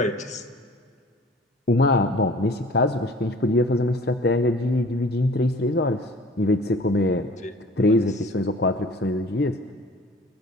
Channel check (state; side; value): normal; both; correlation 0.47